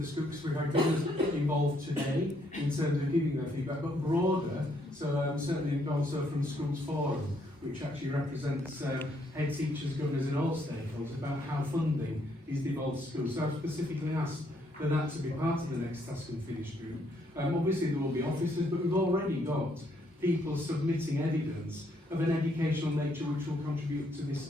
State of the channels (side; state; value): both; normal; correlation 0.71